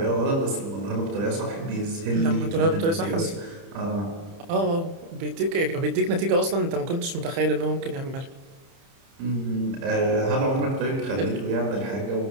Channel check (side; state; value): left; late; 30 ms